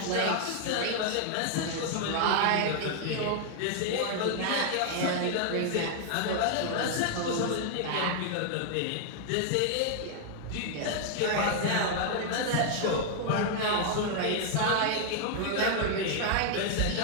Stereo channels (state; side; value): different; both; correlation 0.00